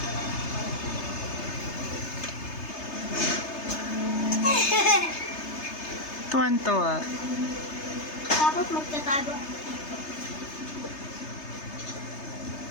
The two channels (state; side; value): late; right; 3.3 ms